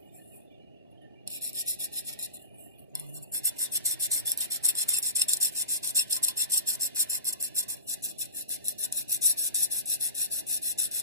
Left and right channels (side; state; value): both; inverted; correlation -0.36